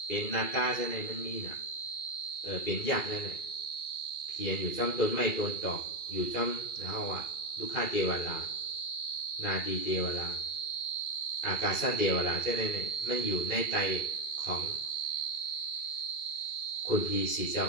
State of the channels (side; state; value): right; late; 2.4 ms